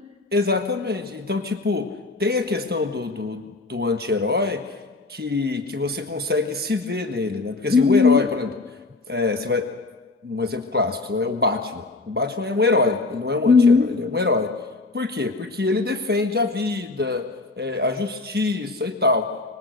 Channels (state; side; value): quieter; right; 3.4 dB